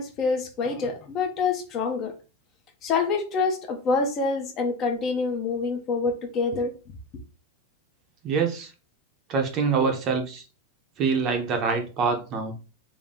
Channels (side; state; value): both; normal; correlation 0.22